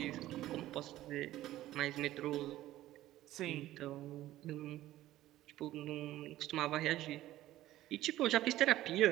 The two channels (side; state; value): left; quieter; 14.8 dB